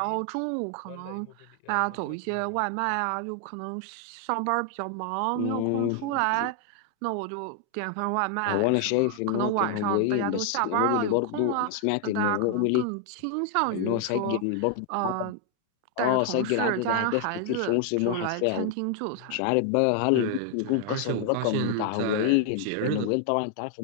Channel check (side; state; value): both; different; correlation 0.00